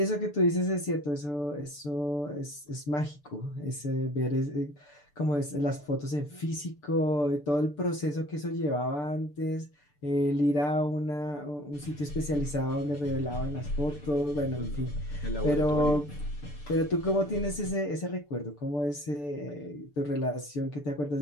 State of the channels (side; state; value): right; late; 6.8 ms